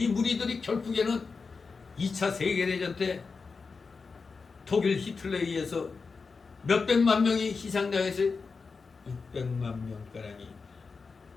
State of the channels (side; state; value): right; quieter; 4.7 dB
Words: 무리들이 결국에는 2차 세계대전 때 독일 히틀러에 의해서 몇백만 명이 희생당해서 600만 명가량이